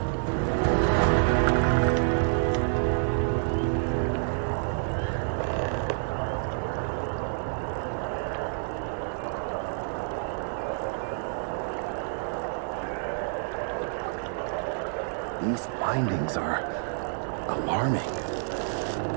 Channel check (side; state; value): left; silent; digital silence